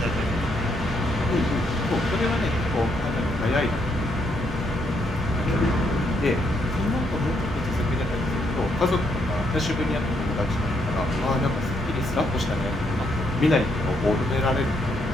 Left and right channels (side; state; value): both; normal; correlation 0.75